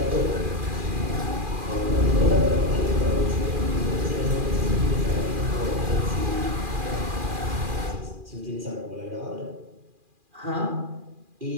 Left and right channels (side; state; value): left; late; 2.4 ms